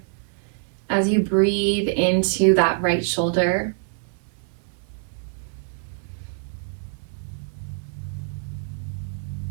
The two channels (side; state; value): left; silent; 62 dB below the other